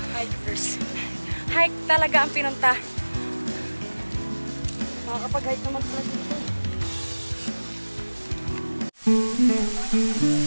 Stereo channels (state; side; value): inverted; both; correlation -1.00